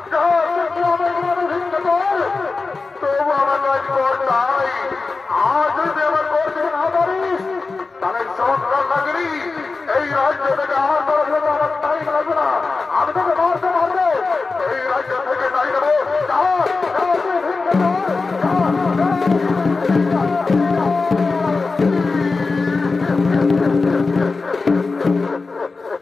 তবু আমার নয় কর তাই। আজ যদি আমার করতে না পারিস তাহলে সংসার লাগলি এই রাজ্য থেকে আমার আমার তাই লাগবে না। আমি তোকে মারতে পারবো, এই রাজ্য থেকে তাই দেবো।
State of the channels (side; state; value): right; quieter; 4.0 dB